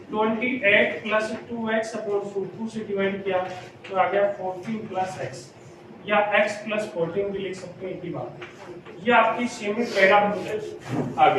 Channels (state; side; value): identical; both; correlation 1.00